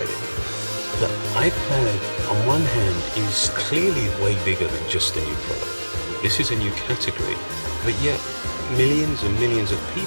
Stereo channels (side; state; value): both; inverted; correlation -1.00